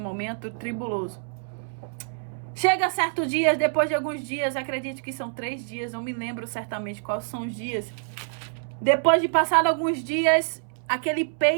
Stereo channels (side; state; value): left; silent; 60 dB below the other